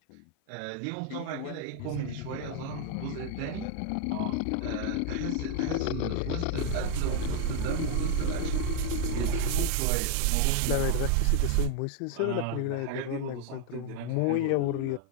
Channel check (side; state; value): both; different; correlation 0.00